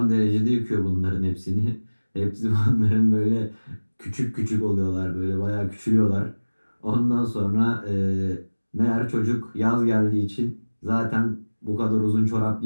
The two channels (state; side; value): inverted; both; correlation -1.00